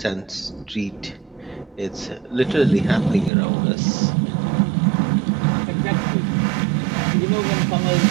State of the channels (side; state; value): left; drops out; at 3.3 s